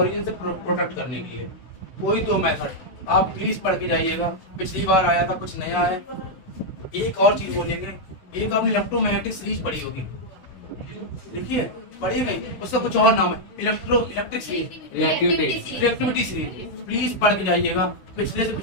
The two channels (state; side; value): late; right; 16 ms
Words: से प्रोटेक्ट करने के लिए। कोई दो मेथड आप प्लीज पढ़ के जाइएगा। पिछली बार आया था, कुछ नया है। एक और चीज बोलेंगे, एक आपने इलेक्ट्रोमैग्नेटिक सीरीज पढ़ी होगी, देखिए पढ़ी नहीं, उसका कुछ और नाम है, electric series, reactivity series. Please पढ़ के जाइएगा। पिछले से